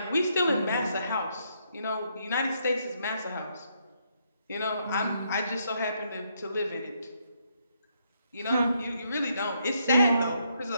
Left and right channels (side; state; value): both; inverted; correlation -0.75